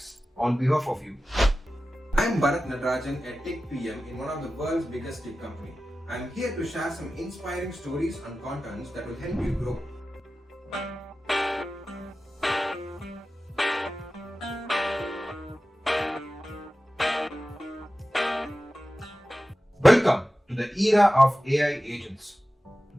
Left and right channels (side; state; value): both; normal; correlation 0.95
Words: on behalf of you. I'm Barath, a tech PM in one of the world's biggest tech company. I'm here to share some inspiring stories and contents that will help you grow. Welcome to the era of AI agents.